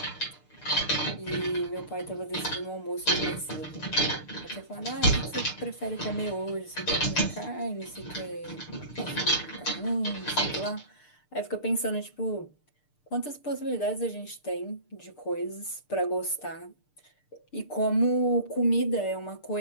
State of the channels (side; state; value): right; late; 6.7 ms